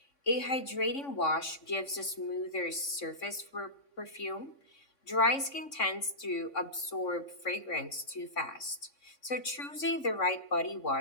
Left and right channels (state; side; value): late; right; 3.6 ms